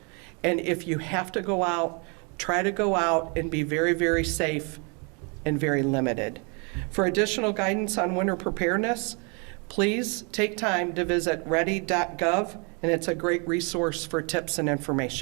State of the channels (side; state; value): left; quieter; 33.9 dB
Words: and if you have to go out, try to go out and be very, very safe and very limited. For additional guidance on winter preparedness, please take time to visit ready.gov, and it's a great resource for tips and